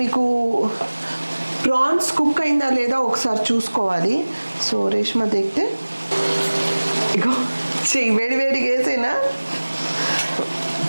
మీకు ప్రాన్స్ కుక్ అయిందా లేదా ఒకసారి చూసుకోవాలి. సో రేష్మా దేక్తే ఇగో చెయ్యి వేడిగా వేసేనా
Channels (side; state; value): both; inverted; correlation -1.00